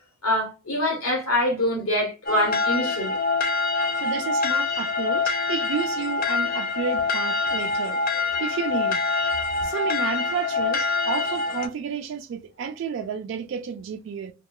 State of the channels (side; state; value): both; normal; correlation -0.05